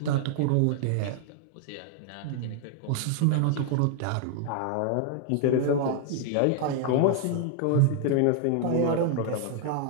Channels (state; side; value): different; both; correlation 0.00